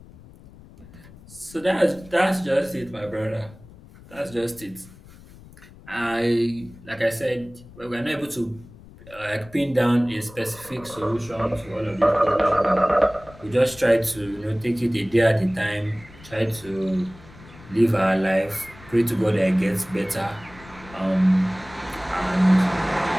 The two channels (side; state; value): left; noise; rumble, 21 dB below the sound